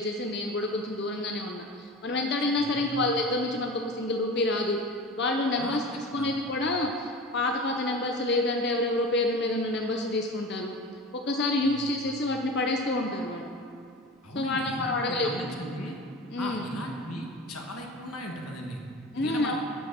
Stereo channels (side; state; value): both; normal; correlation 0.34